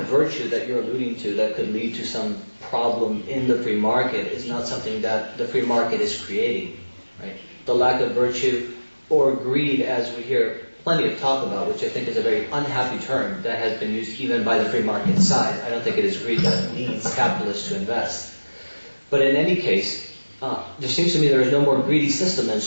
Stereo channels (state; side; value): inverted; both; correlation -1.00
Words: virtue that you're alluding to that could lead to some problem in the free market is not something that the free market is creating, right? The lack of virtue or greed, as we hear plenty of talk about, which I think is a very unhappy term that has been used even by the free market side. I don't think it is greed that leads capitalists to invest. But in any case, there seems to me there is no more greedy system than